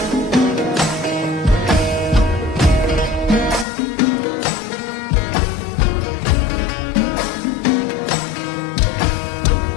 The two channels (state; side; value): drops out; right; at 3.7 s